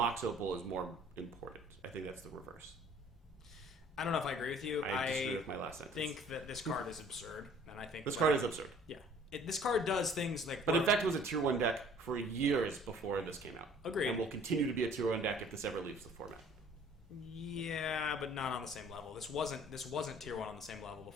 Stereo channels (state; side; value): normal; both; correlation 0.53